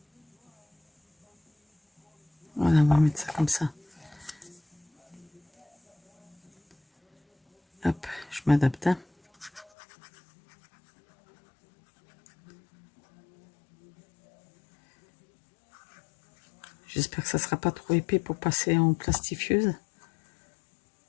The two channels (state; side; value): drops out; right; at 9.7 s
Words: Voilà, on va mettre ça comme ça. Hop, je m'adapte. Hein. J'espère que ça sera pas trop épais pour passer en plastifieuse.